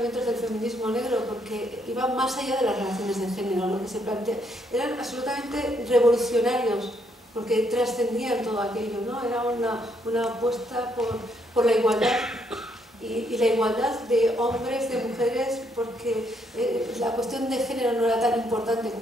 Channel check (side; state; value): both; normal; correlation 0.73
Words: del feminismo negro, porque iban más allá de las relaciones de género. Lo que se plantea eran absolutamente revolucionarios, porque trascendían todo aquello, ¿no? Era una apuesta por la igualdad y la igualdad de hombres, de mujeres, porque la cuestión de género no era tan importante